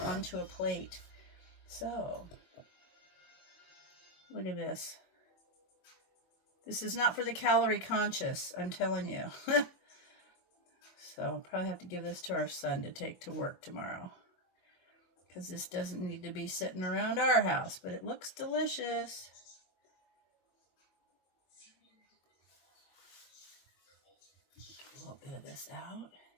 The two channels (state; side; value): late; right; 22 ms